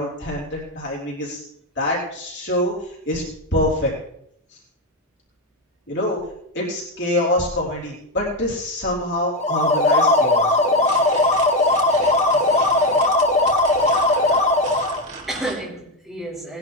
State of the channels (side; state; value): both; normal; correlation 0.08